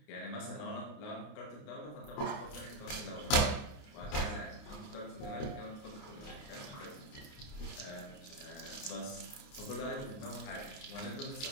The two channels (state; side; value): late; right; 29 ms